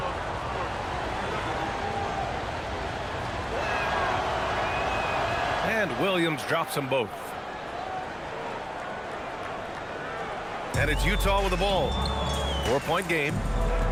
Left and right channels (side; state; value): both; identical; correlation 1.00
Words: And Williams drops them both. And it's Utah with the ball. 4-point game.